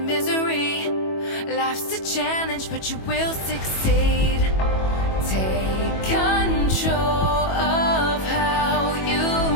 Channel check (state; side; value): late; right; 21 ms